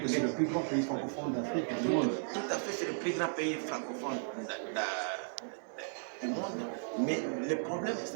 c'est le plus grand pays francophone d'Afrique du monde. Tout à fait, c'est le plus grand pays francophone du monde, mais le problème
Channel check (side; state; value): left; silent; digital silence